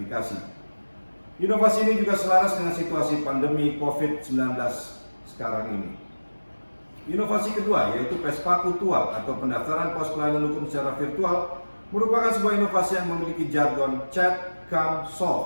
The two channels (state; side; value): inverted; both; correlation -1.00